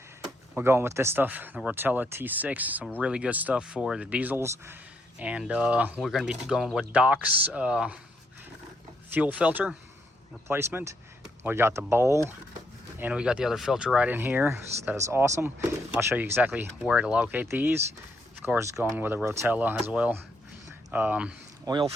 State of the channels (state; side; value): normal; both; correlation 0.75